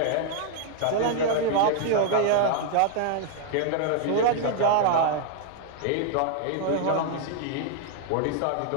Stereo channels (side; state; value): both; different; correlation 0.00